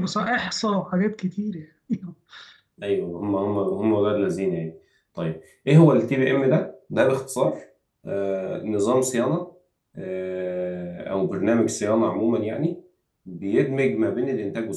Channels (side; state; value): both; identical; correlation 1.00